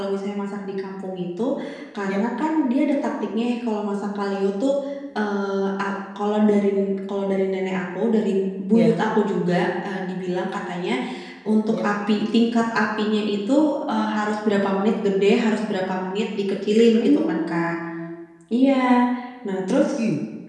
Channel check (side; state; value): both; identical; correlation 1.00